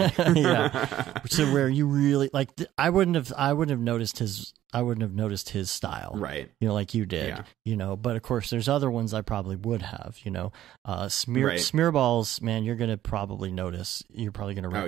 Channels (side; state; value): left; quieter; 12.9 dB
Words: yeah. So where you really like, I wouldn't have noticed his style, right? You know, like you did, you know. But of course, there's other ones I probably would have, you know. Smearballs, man, you're gonna probably notice. You're probably gonna